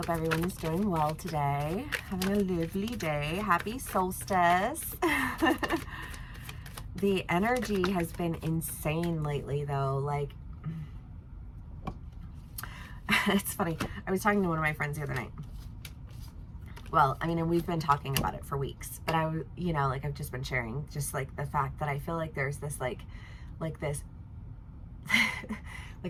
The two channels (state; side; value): identical; both; correlation 1.00